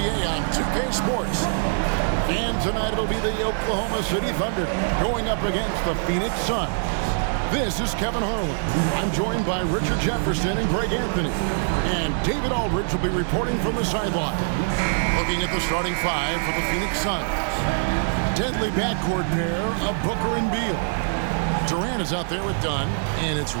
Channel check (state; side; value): silent; left; 63 dB below the other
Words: on 2K Sports. And tonight it'll be the Oklahoma City Thunder going up against the Phoenix Suns. This is Kevin Harlan. I'm joined by Richard Jefferson and Greg Anthony. And David Aldridge will be reporting from the sideline. Looking at the starting five for the Phoenix Suns. Deadly backcourt pair of Booker and Beal. Durant is out there with Dunn, and it's